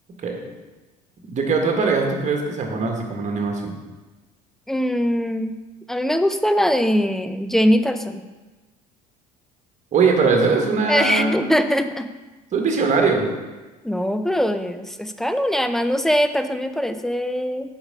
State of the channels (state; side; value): normal; both; correlation 0.72